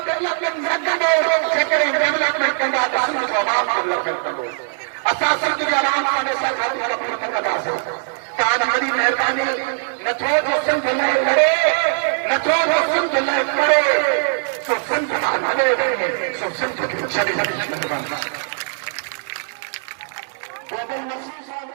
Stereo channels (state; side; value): silent; left; digital silence